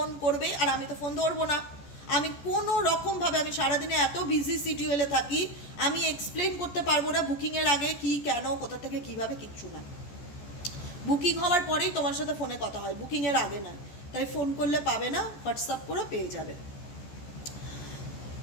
করবে, আর আমি তো ফোন ধরবো না। আমি কোনো রকমভাবে, আমি সারাদিনে এত বিজি শিডিউলে থাকি, আমি এক্সপ্লেন করতে পারবো না বুকিংয়ের আগে কি, কেন, কোথা থেকে, কিভাবে, কিচ্ছু না। বুকিং হওয়ার পরেই তোমার সাথে ফোনে কথা হয়, বুকিংয়ের আগে না। তাই ফোন করলে পাবে না, হোয়াটসঅ্যাপ করে পেয়ে যাবে।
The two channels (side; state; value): right; late; 14 ms